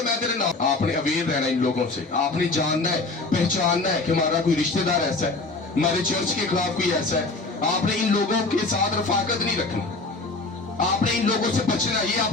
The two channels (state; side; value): quieter; right; 3.4 dB